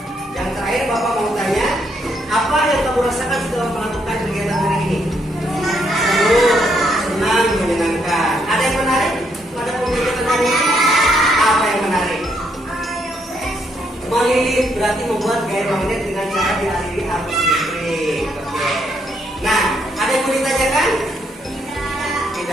yang terakhir Bapak mau tanya, apa yang kamu rasakan setelah melakukan kegiatan hari ini? Seru, senang, menyenangkan. Ada yang menarik pada kegiatan hari ini? Apa yang menarik? Melilit berarti membuat gaya magnet dengan cara dialiri arus listrik. Oke. Nah, ada yang mau ditanyakan?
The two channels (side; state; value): both; normal; correlation 0.74